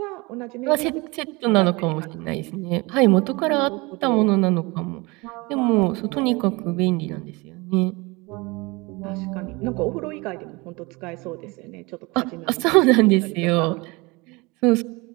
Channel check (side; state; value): left; quieter; 25.3 dB